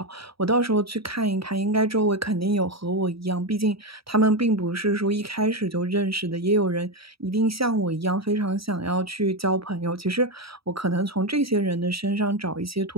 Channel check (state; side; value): late; left; 0.76 ms